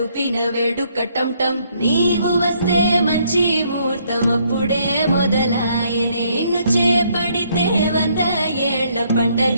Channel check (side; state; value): both; inverted; correlation -0.69